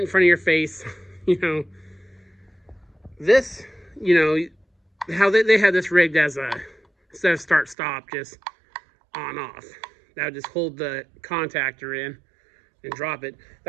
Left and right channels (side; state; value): left; drops out; at 7.8 s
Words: in front of your face. This, how they had this rigged as instead of start stop, just on off. That would just hold the contactor in and drop it.